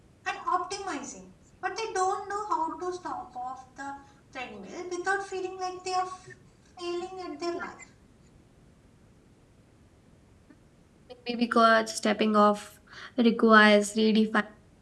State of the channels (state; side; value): identical; both; correlation 1.00